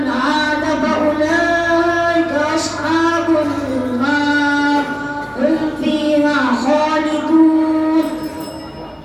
عاد فأولئك أصحاب النار هم فيها خالدون.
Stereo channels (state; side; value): identical; both; correlation 1.00